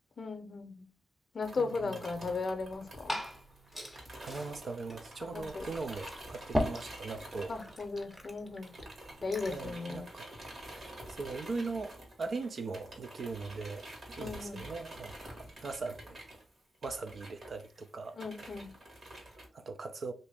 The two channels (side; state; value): both; normal; correlation 0.86